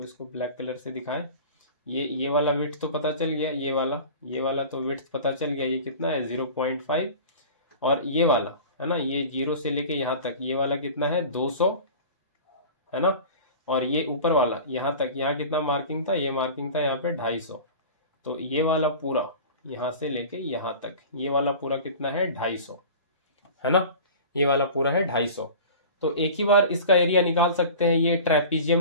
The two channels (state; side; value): inverted; both; correlation -0.38